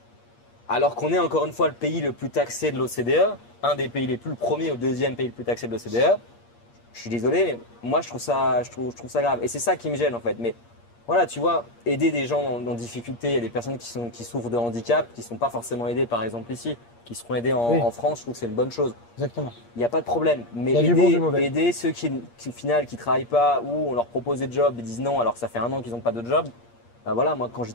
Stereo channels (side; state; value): right; late; 8.5 ms